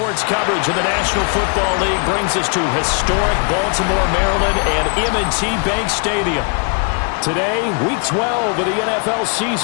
coverage of the National Football League brings us to historic Baltimore, Maryland, and M&T Bank Stadium. Today, Week 12 of the NFL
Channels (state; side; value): quieter; right; 38.9 dB